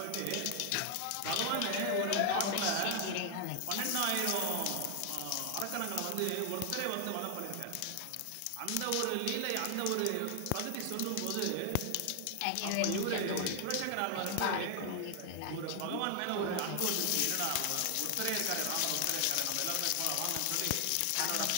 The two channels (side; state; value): both; different; correlation 0.00